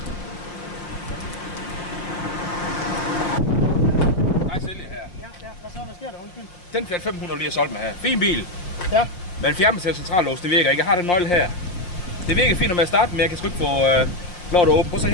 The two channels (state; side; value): late; right; 5.6 ms